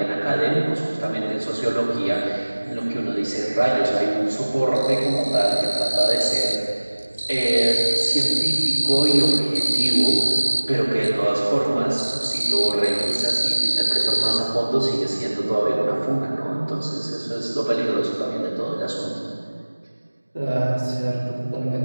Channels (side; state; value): both; inverted; correlation -1.00